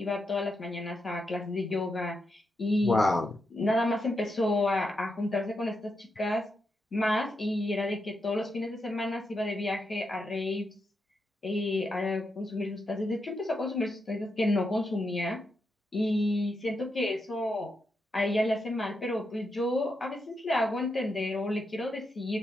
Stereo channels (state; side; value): normal; both; correlation 0.84